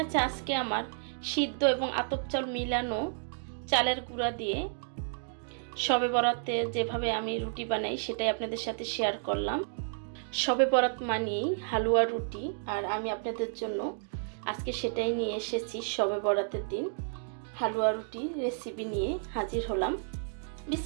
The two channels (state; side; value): silent; left; digital silence